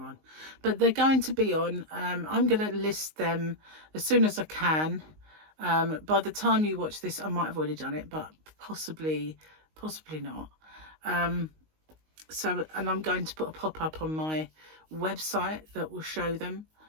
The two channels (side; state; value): left; late; 19 ms